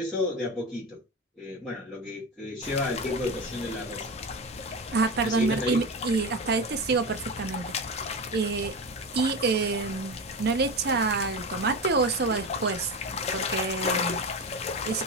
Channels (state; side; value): normal; both; correlation 0.22